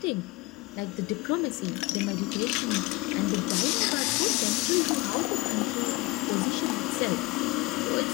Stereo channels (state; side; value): quieter; right; 22.3 dB